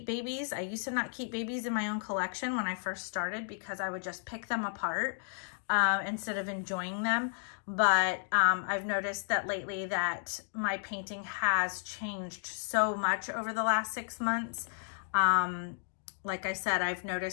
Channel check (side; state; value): right; silent; digital silence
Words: babies. I used to not keep babies in my own collection when I first started because I would just pick them apart instead of enjoying them. But I've noticed that lately that my painting has changed so much over the last 6 months. Like I said, I've